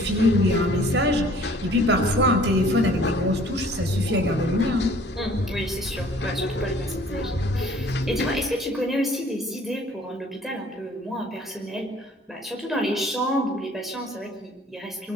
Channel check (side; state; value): both; normal; correlation 0.54